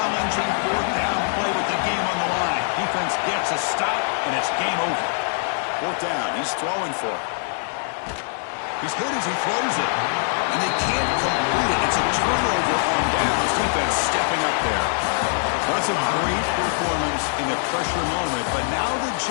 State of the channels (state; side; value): silent; right; 63 dB below the other